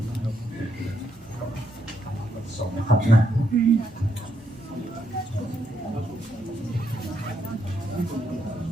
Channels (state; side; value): normal; both; correlation 0.77